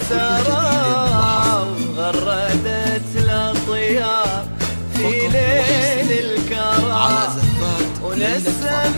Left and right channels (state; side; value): inverted; both; correlation -1.00